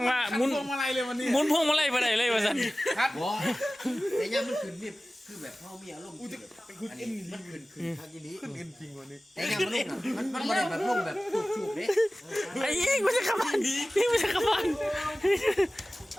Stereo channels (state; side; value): normal; both; correlation 0.97